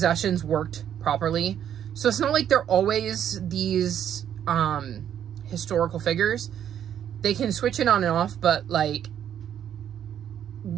worked properly. So it's not like they're always these historical figures. They can switch it on and off, but like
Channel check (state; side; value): quieter; left; 9.7 dB